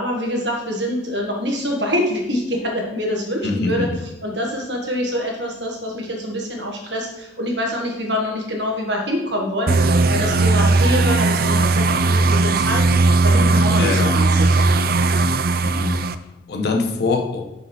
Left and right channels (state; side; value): normal; both; correlation 0.58